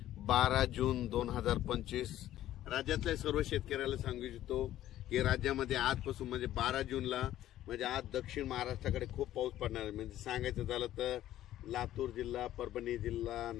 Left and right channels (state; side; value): quieter; right; 13.2 dB